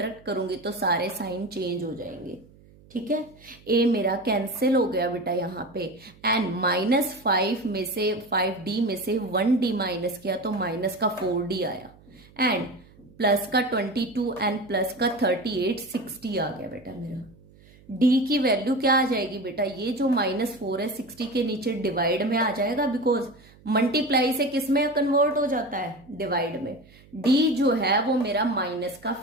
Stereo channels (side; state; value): right; noise; hum, 26 dB below the sound